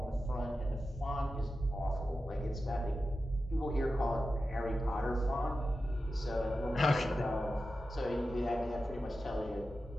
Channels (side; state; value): both; normal; correlation 0.92